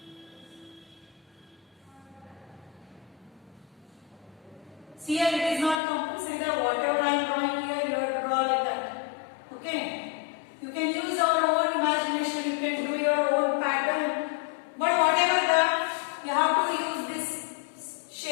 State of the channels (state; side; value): drops out; right; at 5.8 s